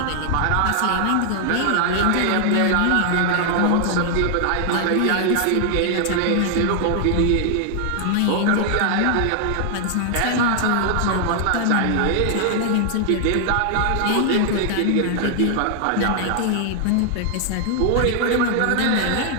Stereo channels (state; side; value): different; both; correlation 0.00